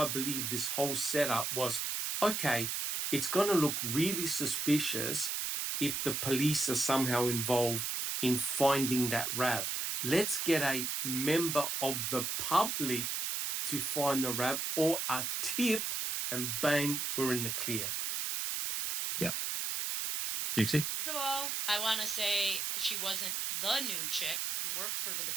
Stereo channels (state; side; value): noise; right; hiss, 1 dB below the sound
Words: I believe this whole setup was, okay, it's going to look really suspicious if the police are somehow involved in finding that RAV. Let's get a member of the public to find the RAV or a tip, and bang, we're in the clear. Yeah. Dixie? First of all, I want to say she wasn't the new chick. She worked for the